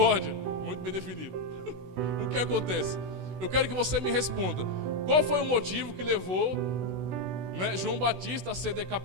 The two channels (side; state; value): left; late; 16 ms